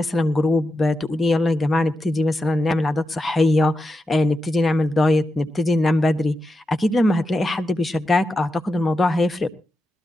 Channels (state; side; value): normal; both; correlation 0.89